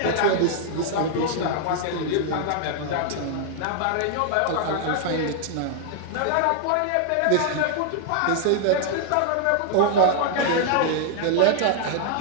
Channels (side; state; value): both; different; correlation -0.01